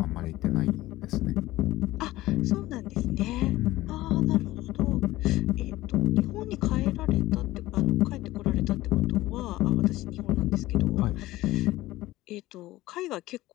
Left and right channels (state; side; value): quieter; right; 17.3 dB